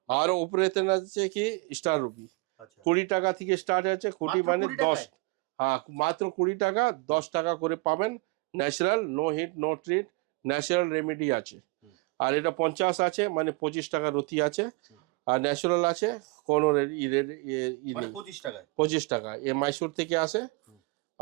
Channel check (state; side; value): quieter; left; 27.2 dB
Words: আর উপরেতন আছে কি স্টার রুবি, আচ্ছা। 20 টাকা থেকে স্টার্ট আছে, 20 মাত্র মানে 20 টাকায়? 10। হ্যাঁ মাত্র 20 টাকা, 10 টাকা করে পাবেন। Natural no heat no treat, natural remedy আছে। আর এটা 50 আছে মানে 25 টাকার রতি আছে। আর ন্যাচারাল আছে কোনো মানে 25 টাকায়? 25 টাকা। এ মাইসোর থেকে আসে,